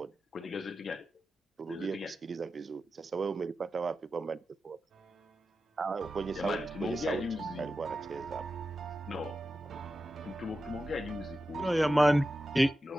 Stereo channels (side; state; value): both; normal; correlation 0.91